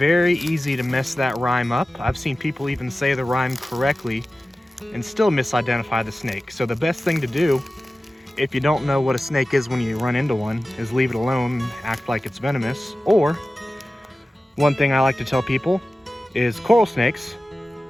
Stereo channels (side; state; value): both; normal; correlation 0.95